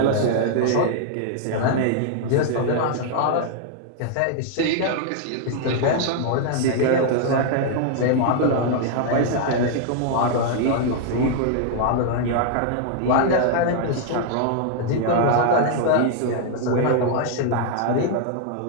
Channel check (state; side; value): different; both; correlation 0.00